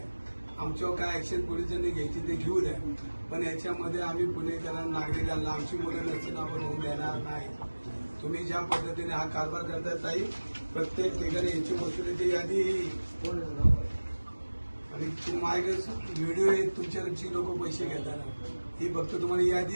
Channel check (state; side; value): inverted; both; correlation -1.00